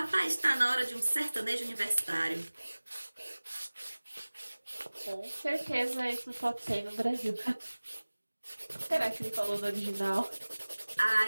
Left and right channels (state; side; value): inverted; both; correlation -1.00